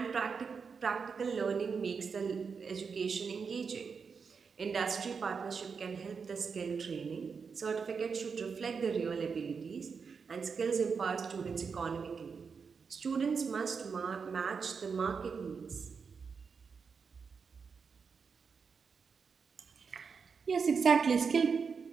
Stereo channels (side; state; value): left; quieter; 5.6 dB